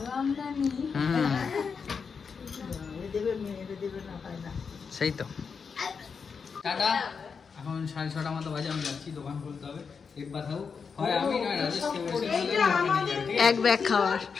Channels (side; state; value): right; quieter; 5.8 dB